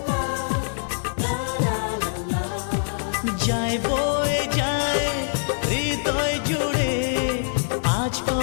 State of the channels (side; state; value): right; silent; 58 dB below the other